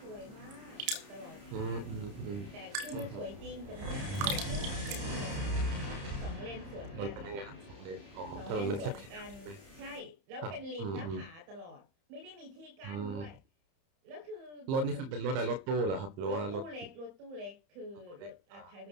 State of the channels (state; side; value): late; left; 30 ms